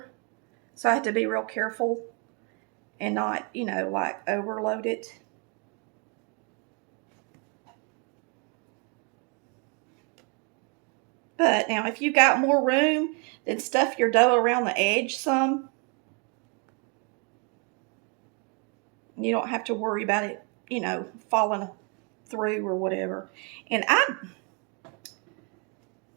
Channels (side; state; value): left; quieter; 35.1 dB